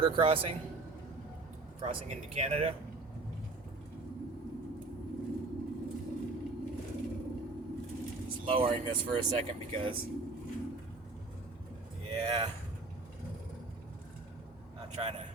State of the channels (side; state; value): left; quieter; 3.4 dB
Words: crossing into Canada. Just lowering this for a second because, yeah, not trying to.